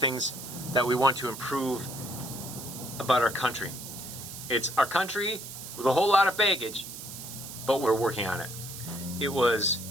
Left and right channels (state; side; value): noise; right; hiss, 11 dB below the sound